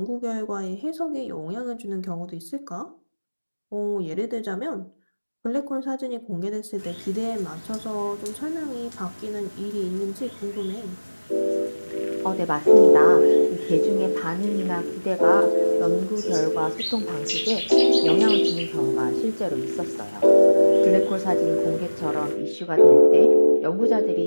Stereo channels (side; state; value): both; inverted; correlation -1.00